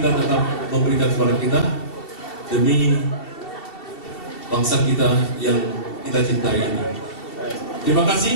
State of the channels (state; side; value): late; right; 2.7 ms